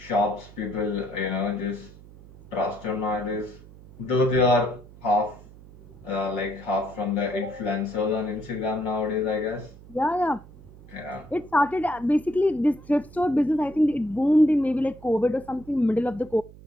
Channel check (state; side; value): noise; right; hum, 20 dB below the sound